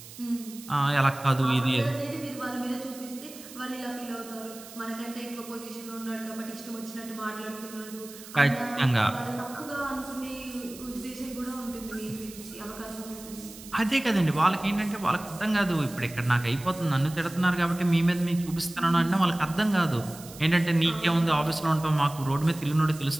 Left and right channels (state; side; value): noise; right; hiss, 16 dB below the sound